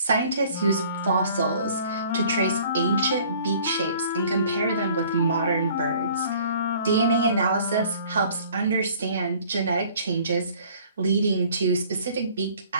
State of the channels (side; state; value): both; inverted; correlation -0.53